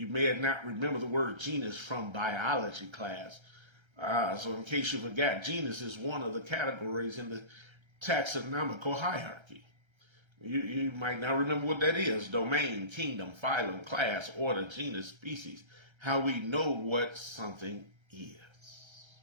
may not remember the word genus from biology class. So in case you forgot, genus is one of the categories in the taxonomical hierarchy. You might not remember what that is. Domain, kingdom, phylum, class, order, genus, species. How we know what something is.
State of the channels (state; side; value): late; left; 1.3 ms